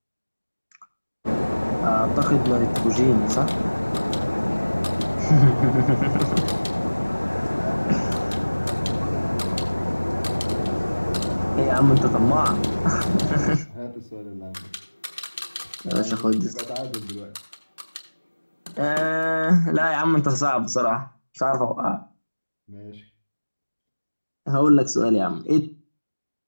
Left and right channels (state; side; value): inverted; both; correlation -1.00